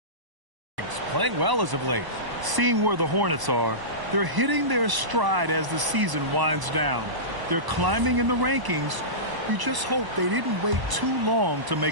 Playing well as of late. Seeing where the Hornets are, they're hitting their stride as the season winds down. They're climbing in the rankings. You just hope they didn't wait too long to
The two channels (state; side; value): late; left; 1.0 ms